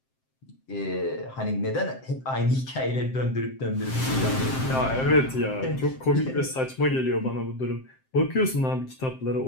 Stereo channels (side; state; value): right; late; 7.7 ms